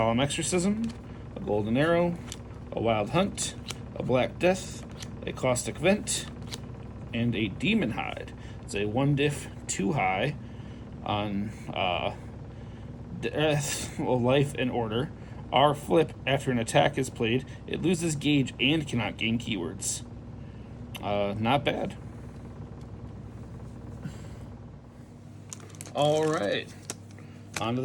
Exorcism, a Golden Arrow, a Wild Hunt, a Black Death, a Caustic Vent, and a Demon Hide. It's a 1-diff, 2 high on Death, Life, and Order. R flip, after an attack is played, it loses gauge and cannot gain keywords. Not bad. Alright, on to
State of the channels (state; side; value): identical; both; correlation 1.00